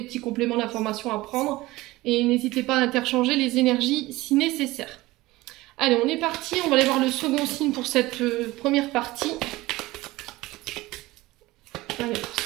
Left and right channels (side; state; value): left; quieter; 19.2 dB